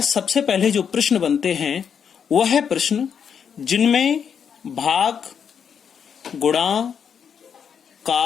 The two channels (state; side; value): quieter; right; 7.4 dB